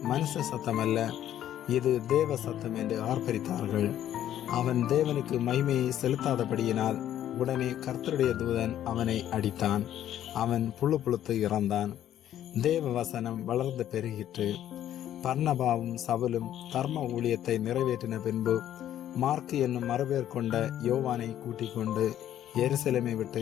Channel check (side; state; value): right; quieter; 11.4 dB